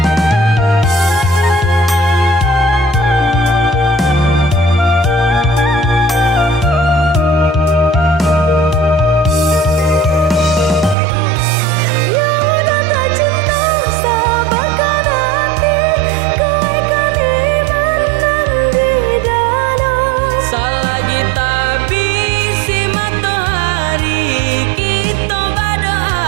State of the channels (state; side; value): drops out; left; at 11.0 s